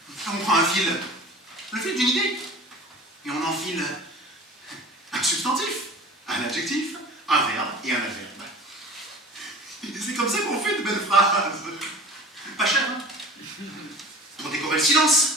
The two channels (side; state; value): both; normal; correlation 0.41